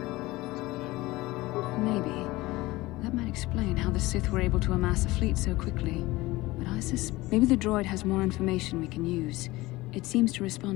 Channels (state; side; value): quieter; right; 19.7 dB